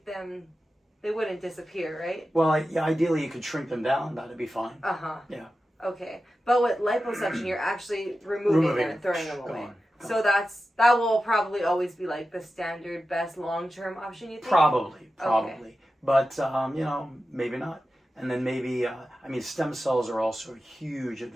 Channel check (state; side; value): normal; both; correlation 0.93